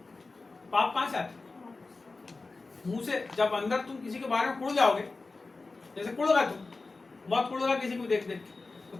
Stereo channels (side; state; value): right; quieter; 3.7 dB